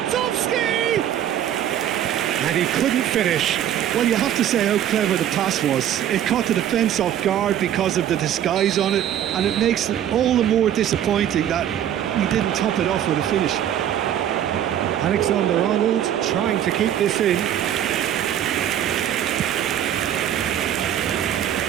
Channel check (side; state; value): left; quieter; 10.7 dB